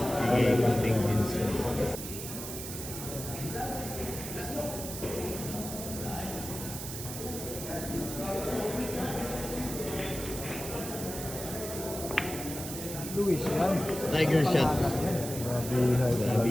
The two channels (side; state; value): right; noise; hiss, 8 dB below the sound